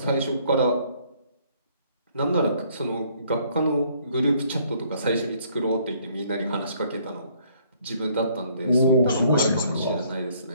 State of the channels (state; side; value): inverted; both; correlation -0.64